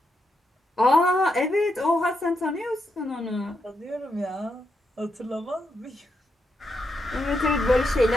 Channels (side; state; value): both; normal; correlation 0.82